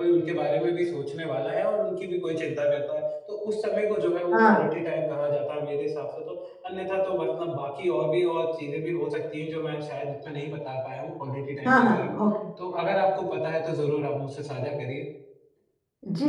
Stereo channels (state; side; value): identical; both; correlation 1.00